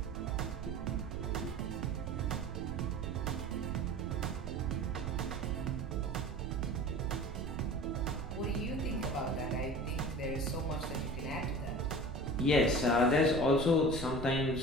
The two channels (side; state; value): right; noise; rumble, 7 dB below the sound